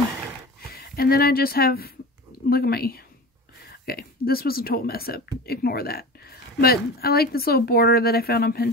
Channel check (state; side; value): normal; both; correlation 0.33